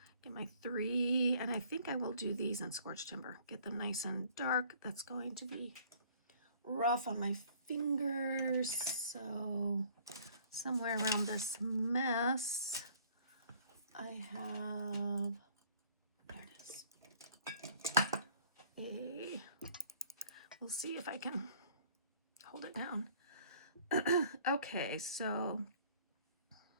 get my 3, and I think I will do these in Scorched Timber. Get them nice and dark. That's going to be rough on my fingers. So somewhere around this mess, I have, there it is. We'll see if I can hold it down. Okay, so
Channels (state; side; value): inverted; both; correlation -0.56